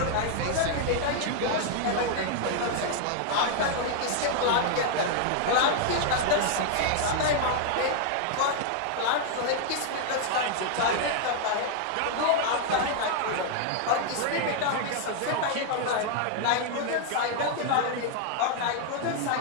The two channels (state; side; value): different; both; correlation 0.00